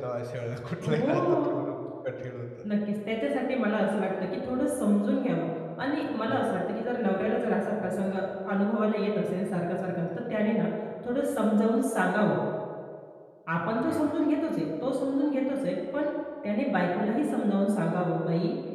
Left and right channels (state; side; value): identical; both; correlation 1.00